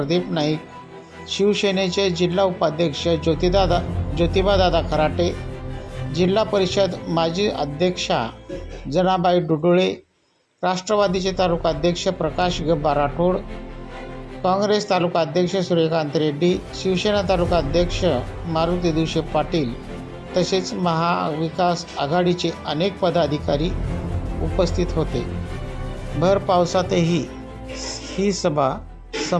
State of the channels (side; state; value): both; identical; correlation 1.00